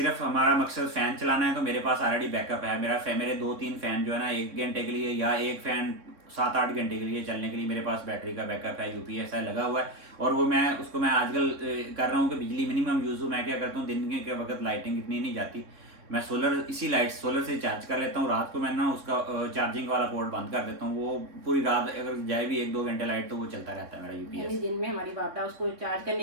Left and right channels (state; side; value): late; left; 3.6 ms